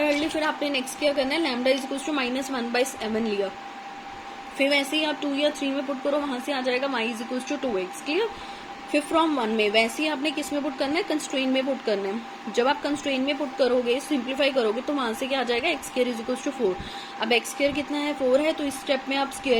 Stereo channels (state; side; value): identical; both; correlation 1.00